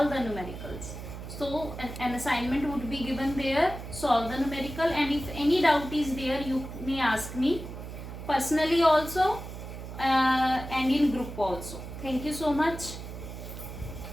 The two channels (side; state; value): right; noise; hum, 10 dB below the sound